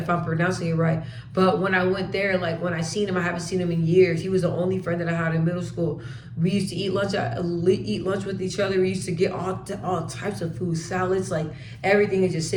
I'm pronouncing it right. But when I went there, like when I seen him, I haven't seen him in years. He was the only friend that I had in middle school. We used to eat lunch with each other. We used to get all types of food, salads, like everything, and just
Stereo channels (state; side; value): identical; both; correlation 1.00